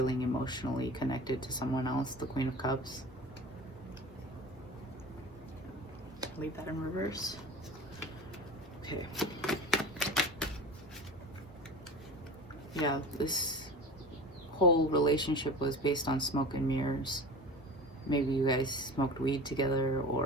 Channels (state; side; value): normal; both; correlation 0.36